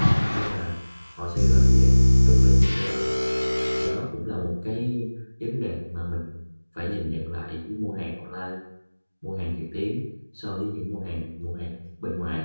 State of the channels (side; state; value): both; inverted; correlation -1.00